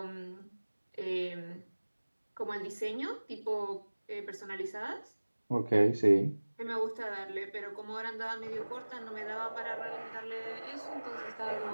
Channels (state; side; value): inverted; both; correlation -1.00